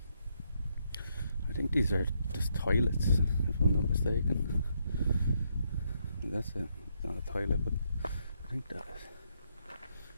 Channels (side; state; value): both; inverted; correlation -0.76